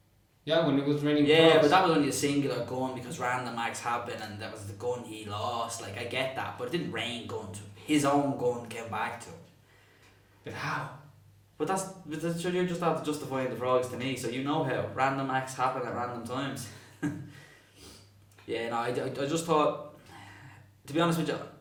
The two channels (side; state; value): both; identical; correlation 1.00